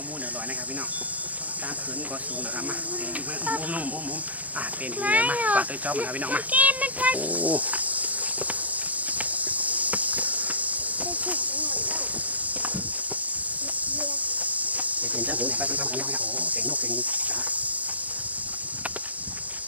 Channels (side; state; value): left; late; 0.074 ms